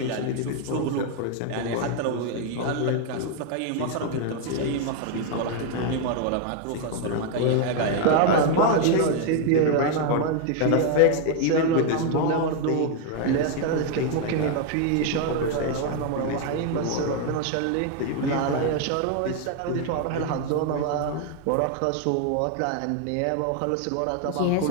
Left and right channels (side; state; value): both; different; correlation 0.00